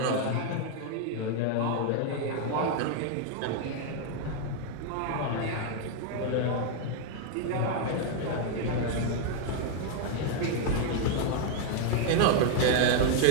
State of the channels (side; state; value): both; different; correlation 0.00